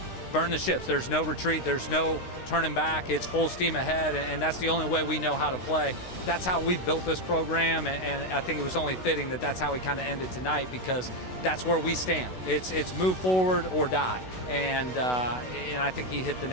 burn the ships. There's no retreat. There's no turning back. It's full steam ahead, and that's the only way we know how to play. That's how we've built this program, and I think it was only fitting that that's how we kind of ended tonight, because that's where we stand. It's move forward or die, and I think he hit the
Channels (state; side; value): late; right; 16 ms